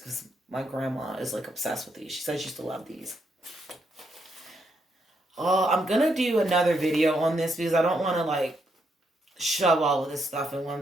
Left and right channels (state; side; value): normal; both; correlation 0.78